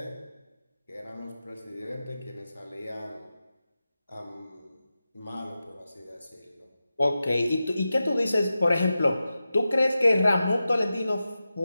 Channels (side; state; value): both; inverted; correlation -0.93